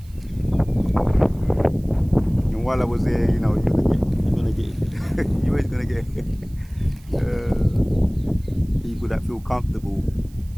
And while I was there, you're gonna get you always gonna get people that feel comfortable.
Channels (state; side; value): noise; right; hiss, 28 dB below the sound